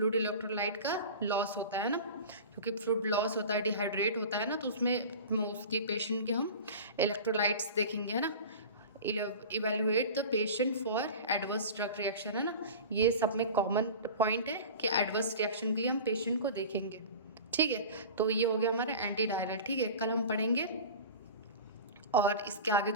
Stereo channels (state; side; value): inverted; both; correlation -0.34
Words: इलेक्ट्रोलाइट का लॉस होता है ना, क्योंकि फ्लूइड लॉस होता है, डिहाइड्रेट होता है ना, तो उसमें उसके पेशेंट के हम इलेक्ट्रोलाइट्स देखेंगे, है ना। Evaluate the patient for adverse drug reaction, है ना। ये सब में कॉमन पॉइंट है कि एडवर्स रिएक्शन के लिए हम पेशेंट को देखेंगे। ठीक है, तो ये हो गया हमारा एंटी डायरियल। ठीक है, कल हम पढ़ेंगे और इसके आगे